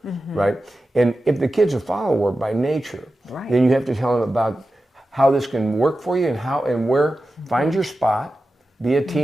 Right? And if the kid's a follower by nature, then you have to tell him about how this can work for you and where, find your spot, be a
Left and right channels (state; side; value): normal; both; correlation 0.92